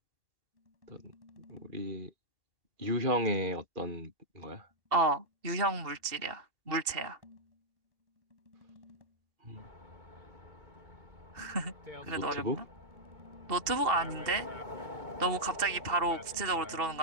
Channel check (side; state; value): left; late; 2.7 ms